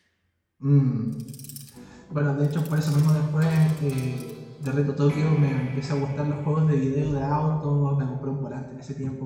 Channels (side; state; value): both; identical; correlation 1.00